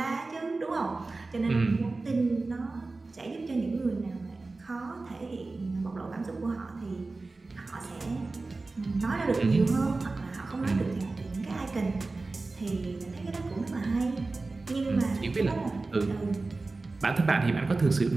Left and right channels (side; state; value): left; quieter; 3.5 dB